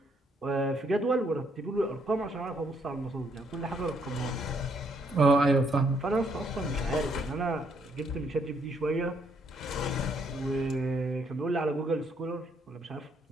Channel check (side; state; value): both; normal; correlation 0.71